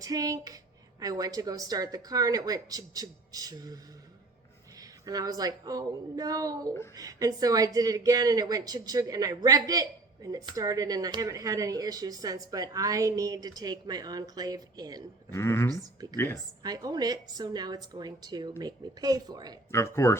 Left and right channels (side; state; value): left; quieter; 3.1 dB